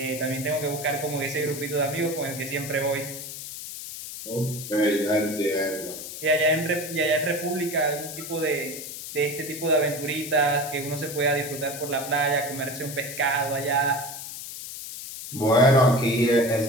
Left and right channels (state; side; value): noise; left; hiss, 9 dB below the sound